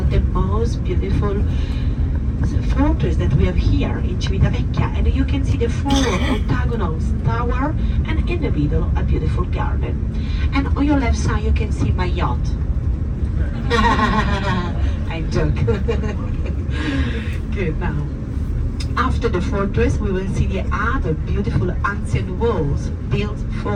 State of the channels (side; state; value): both; identical; correlation 1.00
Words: the most beautiful fortress that we have here in Civitavecchia, and you can see the four octagonal tower, and in the middle a beautiful garden. And on your left side you can see my yacht. I joke. Good. Now, after the fortress we will see the other beautiful ancient walls built